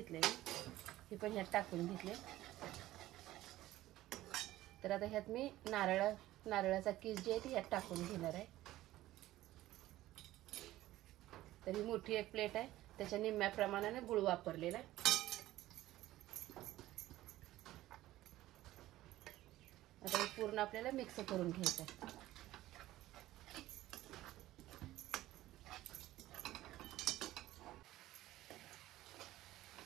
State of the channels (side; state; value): left; quieter; 15.6 dB